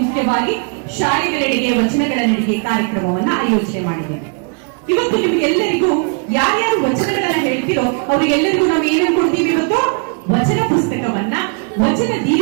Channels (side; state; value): left; quieter; 38.4 dB